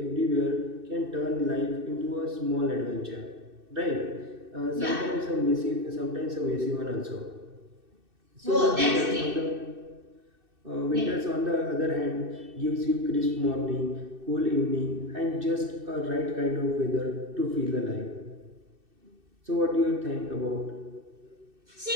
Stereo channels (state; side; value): late; left; 2.6 ms